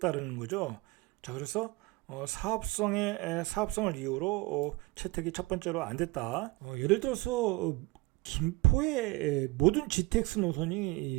거죠. 자, 그래서 사업성을 이유로 채택이 첫 번째로 안 됐다. 예를 들어서 김포의 모든 GTX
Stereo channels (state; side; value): quieter; left; 22.1 dB